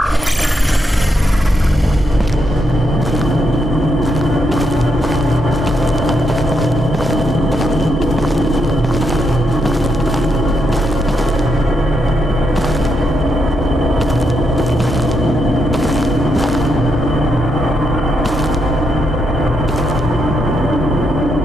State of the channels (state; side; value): normal; both; correlation 0.80